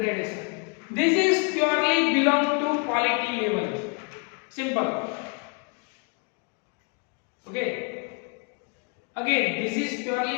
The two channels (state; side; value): quieter; right; 34.5 dB